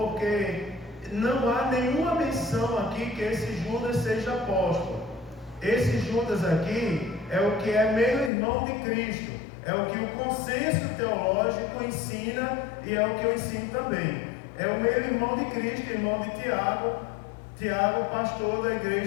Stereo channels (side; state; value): right; drops out; at 8.3 s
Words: não há nenhuma menção aqui que esse Judas seja apóstolo. Esse Judas aqui é o que é meio-irmão de Cristo. É o que o consenso teológico ensina e é o que eu ensino também. É o meio-irmão de Cristo, irmão de Tiago, pastor da